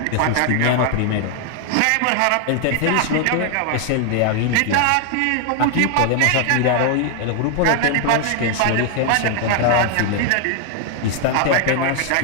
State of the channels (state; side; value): different; both; correlation 0.00